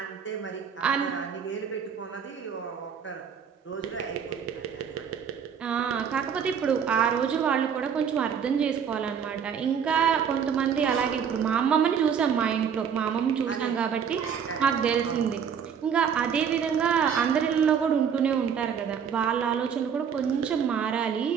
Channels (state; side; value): quieter; left; 7.5 dB